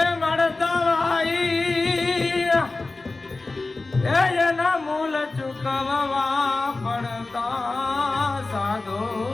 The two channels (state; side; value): quieter; right; 3.4 dB